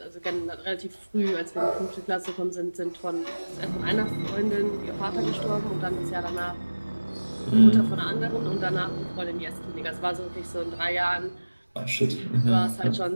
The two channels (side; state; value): both; inverted; correlation -1.00